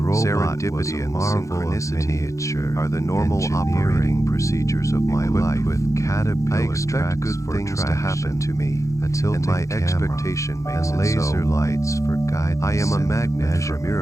was Serendipity a and marvel of synchronicity miniature are the normal engineering, operating procedures of my equipped life. with caterpillar I expect tracks good for things to happen to me, a tilting and my camera, expectation makes and it laser so. lights for guidance. I am a and magnet for measurement.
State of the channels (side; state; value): right; late; 0.15 ms